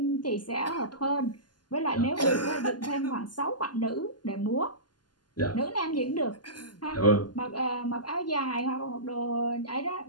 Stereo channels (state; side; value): late; right; 0.71 ms